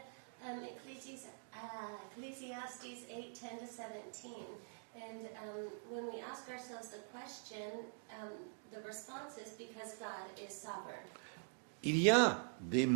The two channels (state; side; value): silent; left; digital silence